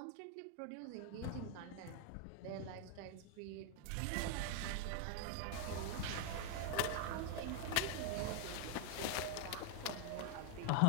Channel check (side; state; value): both; different; correlation 0.00